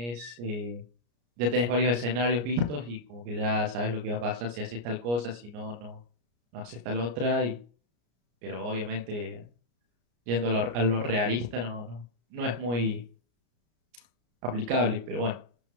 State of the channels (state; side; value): late; left; 34 ms